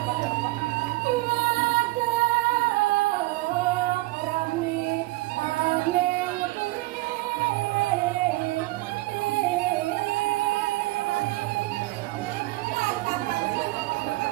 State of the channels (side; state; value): left; quieter; 20.8 dB